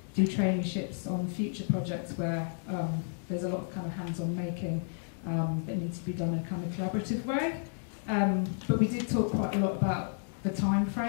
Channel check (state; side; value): silent; right; digital silence